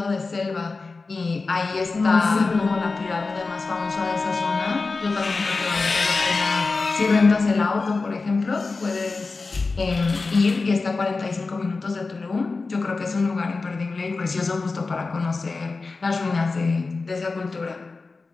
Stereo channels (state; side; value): quieter; right; 3.9 dB